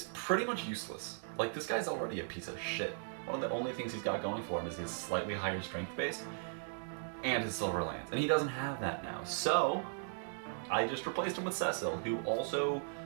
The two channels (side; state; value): left; silent; digital silence